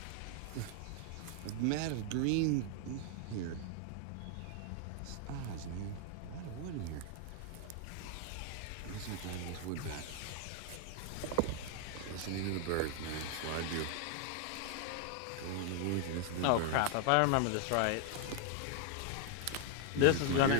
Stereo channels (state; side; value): different; both; correlation 0.00